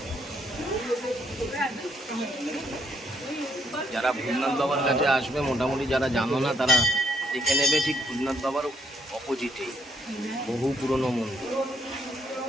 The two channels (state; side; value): normal; both; correlation 0.72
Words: যারা ভূতনাথ বাবার কাছে আসবে মোটামুটি যারা জানো না তারা দেখে নেবে, ঠিক ভূতনাথ বাবার অপোজিটেই বহু পুরনো মন্দির।